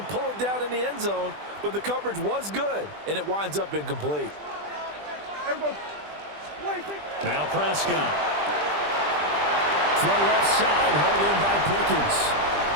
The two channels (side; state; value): left; late; 20 ms